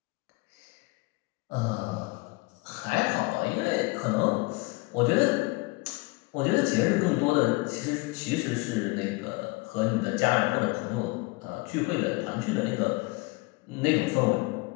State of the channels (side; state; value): right; quieter; 25.0 dB